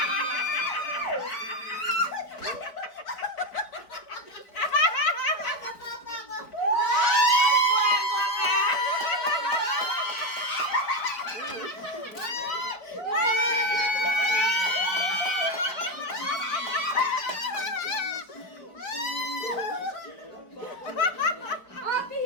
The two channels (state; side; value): late; right; 4.3 ms